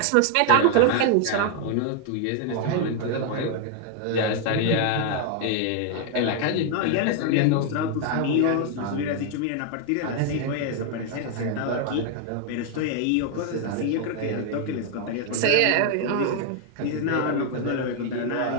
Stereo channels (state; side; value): different; both; correlation 0.00